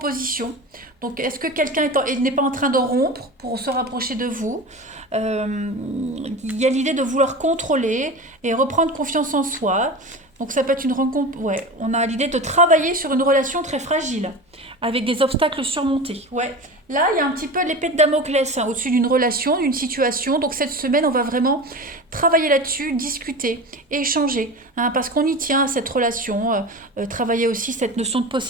Donc est-ce que quelqu'un n'est pas en train de rompre pour se rapprocher de vous? Il y a l'idée de vouloir contrôler et reprendre confiance en soi. Donc ça peut être une rencontre, ouais, on a l'idée de travailler sur une relation très fragile, avec des obstacles surmontés. Ouais, là il y a un petit peu l'épée de Damoclès au-dessus d'une relation, d'une situation. Donc cette semaine, on va vraiment travailler là-dessus, discuter, échanger, parce qu'on y tient à cette relation, travailler aussi cette notion de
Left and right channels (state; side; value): normal; both; correlation 0.30